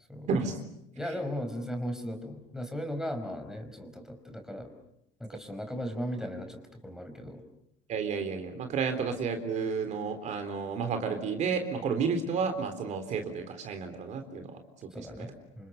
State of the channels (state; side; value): quieter; left; 3.8 dB